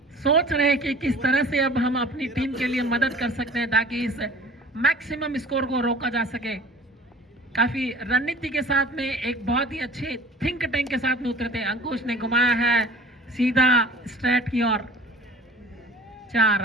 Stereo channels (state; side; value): normal; both; correlation 0.45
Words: सोच रहे हैं कि किस तरह से अब हम अपनी टीम के लिए मदद कर सकते हैं ताकि इस मैक्सिमम स्कोर को रोका जा सके। काफी रणनीति के साथ में एक बहुत ही अच्छे थिंक टैंक के साथ में उतरे थे। अंकुश ने घुमाया है सीधा स्ट्रेट की ओर, 4